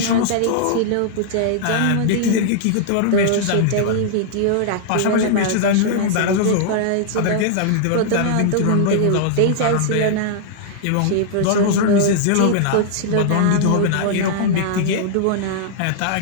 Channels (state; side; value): different; both; correlation -0.01